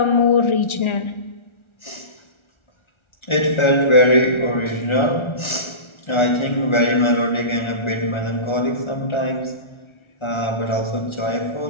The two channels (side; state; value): right; late; 1.4 ms